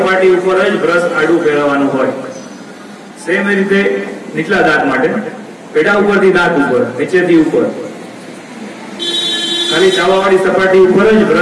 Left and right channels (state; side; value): identical; both; correlation 1.00